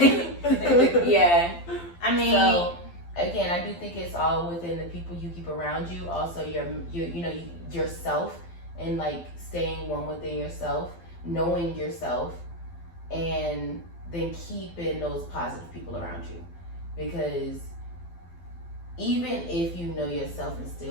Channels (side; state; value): right; late; 12 ms